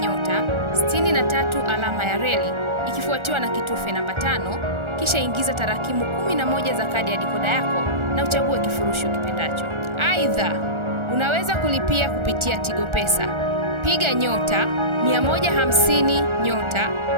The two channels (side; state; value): left; late; 1.4 ms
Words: 63 alama ya reli ikifuatiwa na kitufe namba 5, kisha ingiza tarakimu 11 za kadi ya dikoda yako na uchague kifurushi ukipendacho. Aidha, unaweza kulipia kupitia Tigo Pesa. Piga nyota 150 nyota